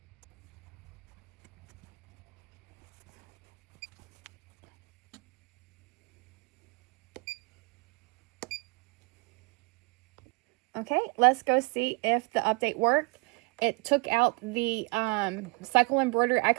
Okay, let's go see if the update worked. It took out the cycle embroidery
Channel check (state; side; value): quieter; left; 28.8 dB